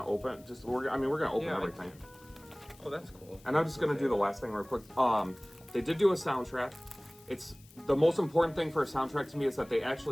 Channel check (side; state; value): left; noise; hiss, 26 dB below the sound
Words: open, we're gonna open everything. Oh, that's cool. And I'm just gonna do the last thing real quick. They did do a soundtrack. It's the most important thing for a soundtrack to me is that they